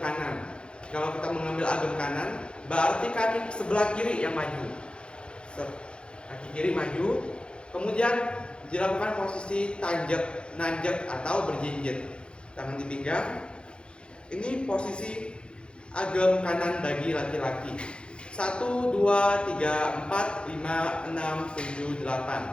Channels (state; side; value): late; right; 0.055 ms